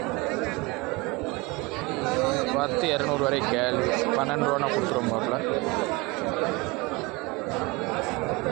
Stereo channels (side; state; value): left; quieter; 24.6 dB